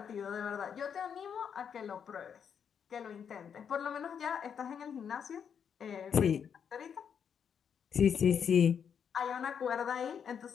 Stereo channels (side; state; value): right; quieter; 7.5 dB